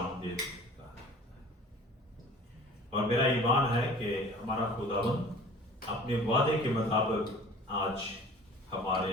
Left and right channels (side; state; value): both; normal; correlation 0.45